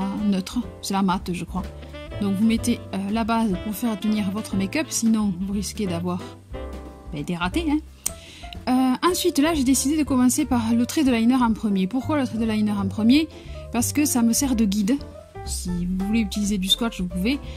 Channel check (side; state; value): both; identical; correlation 1.00